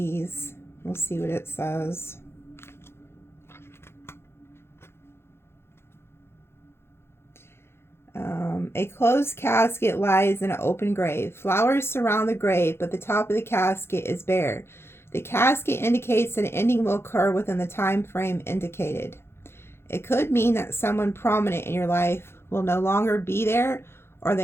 We'll see what it says. A closed casket lies in an open grave. Flowers surround the grave, but the top of the casket is bare. The casket indicates that an ending will occur within the time frame indicated. It could mean that someone prominent in your life will no longer be there or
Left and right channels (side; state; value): right; late; 0.12 ms